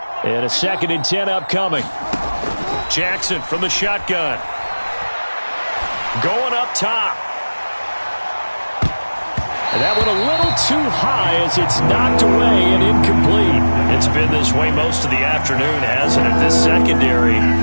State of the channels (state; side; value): inverted; both; correlation -1.00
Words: and a 2nd and 10 upcoming. Jackson from the shotgun. going up top. And that went a little too high as it's knocked away and incomplete. It's been this way most of the afternoon, hasn't it? This secondary